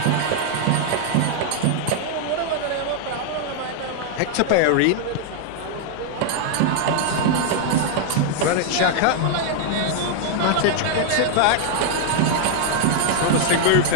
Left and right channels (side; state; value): both; different; correlation 0.00